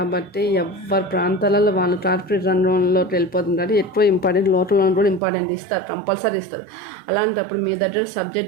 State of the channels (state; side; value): drops out; left; at 5.2 s